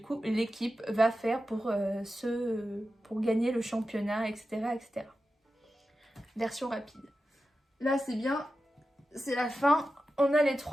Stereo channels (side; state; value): both; normal; correlation 0.92